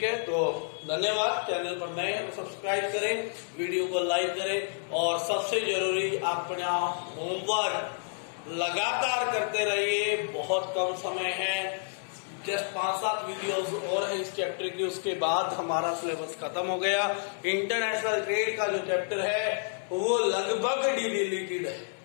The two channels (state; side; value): silent; right; 58 dB below the other